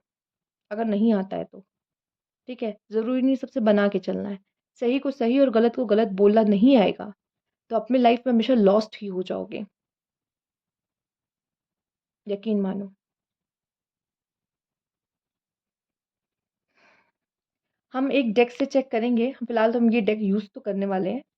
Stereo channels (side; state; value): both; identical; correlation 1.00